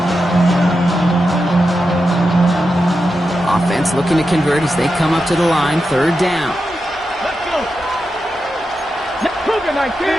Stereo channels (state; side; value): normal; both; correlation 0.89